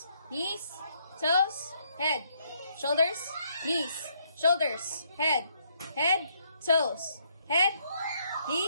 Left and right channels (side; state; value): both; inverted; correlation -0.72